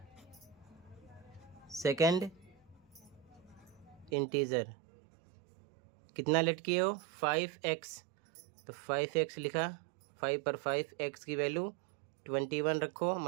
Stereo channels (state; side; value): drops out; left; at 4.1 s